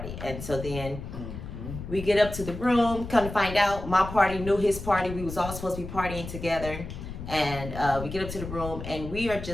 And so then we get up to the room, come to find out my party knew his party. We was all supposed to be partying together. And we get up to the room, and we are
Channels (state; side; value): noise; left; rumble, 9 dB below the sound